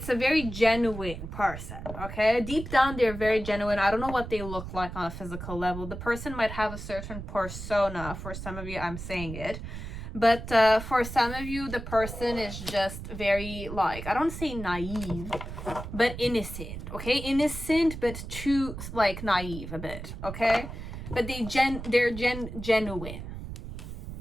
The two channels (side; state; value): right; noise; rumble, 9 dB below the sound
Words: a very genuine person. Okay, deep down they're very genuine. I don't know what they look like on a physical level. The person might have a certain persona. For some of you, I'm saying it, but for some of you, the person is just very, like, I don't say naive, but innocent. Okay, innocent but too like naive a bit. Okay, but they're genuine.